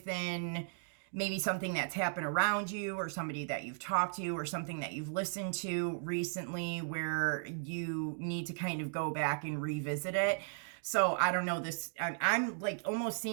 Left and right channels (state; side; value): silent; left; digital silence